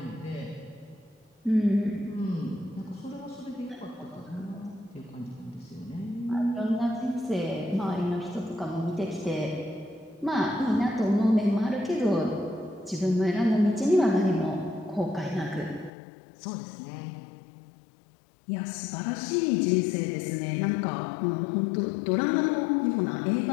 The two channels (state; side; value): drops out; right; at 15.9 s